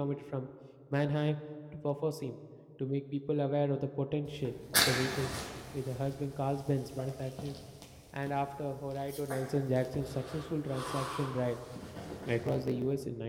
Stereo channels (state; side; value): identical; both; correlation 1.00